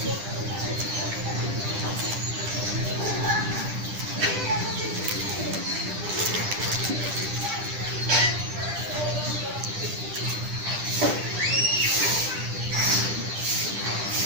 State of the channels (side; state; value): left; late; 9.9 ms